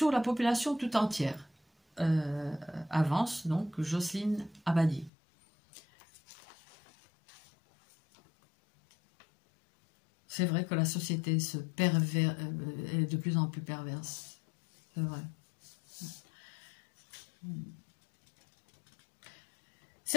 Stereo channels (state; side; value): drops out; right; at 5.1 s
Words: la population tout entière. Avance donc Jocelyne Abadi. C'est vrai que la société est de plus en plus perverse. C'est vrai.